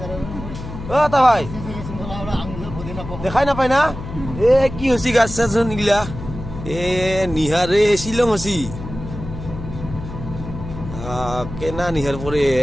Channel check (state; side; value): noise; left; hum, 10 dB below the sound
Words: ও তা ভাই দেখাই নাপায় না এ কি হসি গাছ চাচোন এগুলা এ নিহারে শিলং হসি কেনা নিহার পরে